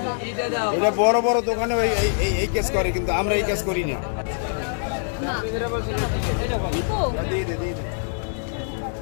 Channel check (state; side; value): silent; right; 63 dB below the other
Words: এটা বড় বড় দোকানে এই কেস করে কিন্তু আমরা এই কেস করি না না